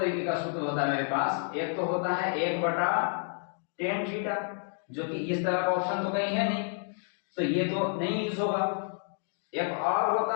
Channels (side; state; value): right; silent; 58 dB below the other